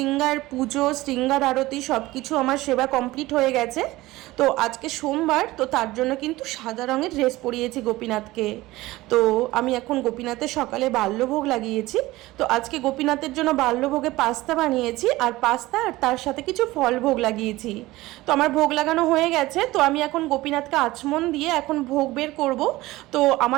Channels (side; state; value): left; quieter; 18.5 dB